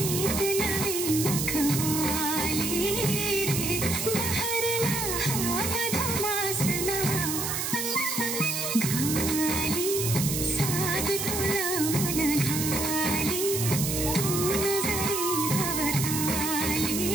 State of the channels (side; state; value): right; noise; hiss, 2 dB below the sound